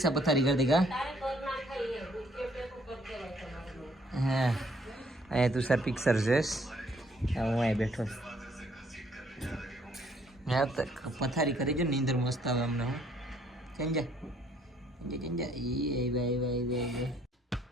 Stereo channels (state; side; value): normal; both; correlation 0.65